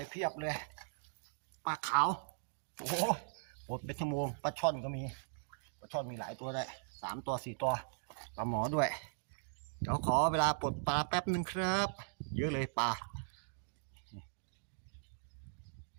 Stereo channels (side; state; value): left; silent; digital silence